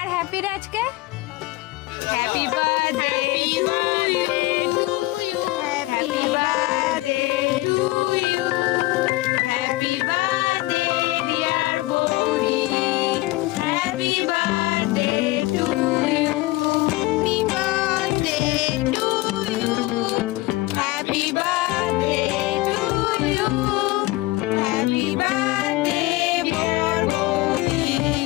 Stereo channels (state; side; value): quieter; right; 19.9 dB